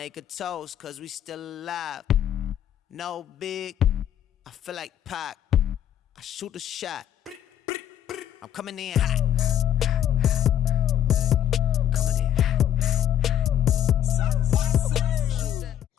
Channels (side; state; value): right; quieter; 10.3 dB